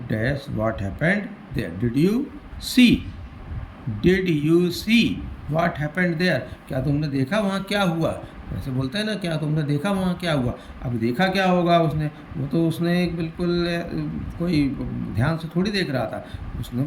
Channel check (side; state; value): both; identical; correlation 1.00